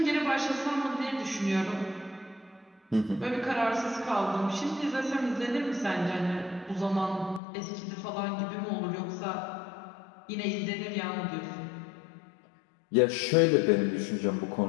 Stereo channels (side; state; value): right; drops out; at 7.4 s